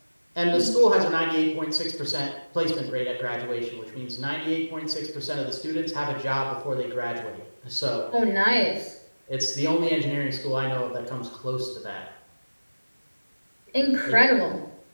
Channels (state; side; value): inverted; both; correlation -1.00